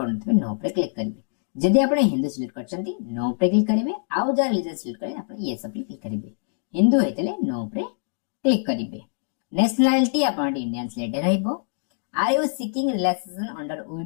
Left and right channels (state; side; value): silent; right; digital silence